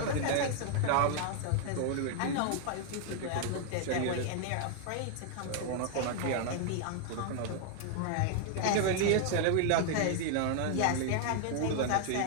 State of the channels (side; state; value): both; different; correlation 0.00